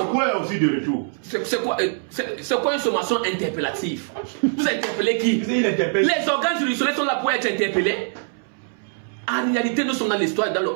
aussi de retour? C'est quoi une sommation interpellative? Vous interpellez qui? Les organes juridictionnels sont là pour être interpellés. En réalité, nous sommes dans l'histoire, dans le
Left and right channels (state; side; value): silent; left; 63 dB below the other